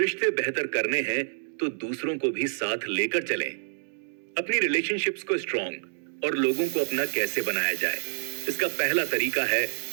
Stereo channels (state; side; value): silent; left; digital silence